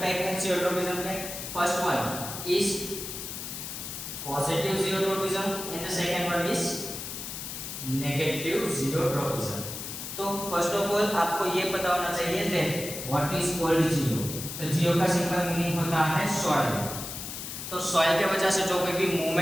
टाइप है जियोट्रोपिज्म के। First one is positive geotropism and the second one is negative geotropism. तो फर्स्ट ऑफ ऑल आपको ये पता होना चाहिए दैट व्हाट इज कॉल्ड जियो। तो जियो का सिंपल मीनिंग होता है सॉइल। तो सॉइल के वजह से जो कोई भी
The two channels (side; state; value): left; noise; hiss, 7 dB below the sound